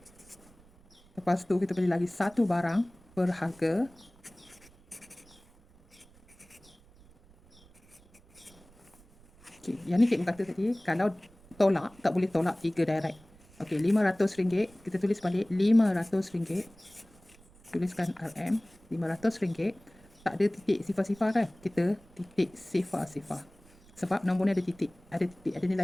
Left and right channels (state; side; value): noise; right; rumble, 26 dB below the sound